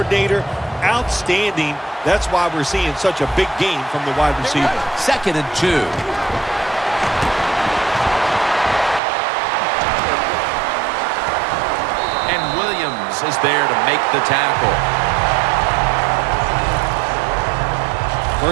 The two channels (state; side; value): drops out; left; at 9.0 s